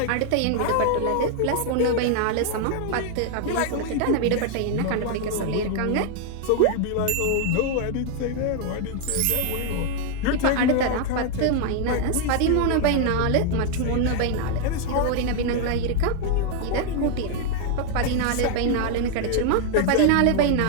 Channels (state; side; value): different; both; correlation 0.00